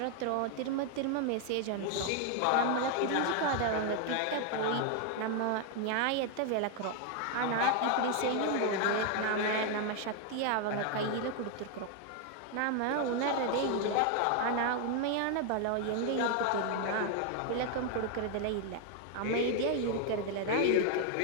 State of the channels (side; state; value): both; different; correlation 0.01